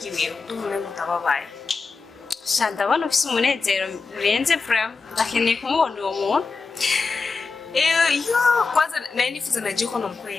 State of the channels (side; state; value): right; quieter; 4.5 dB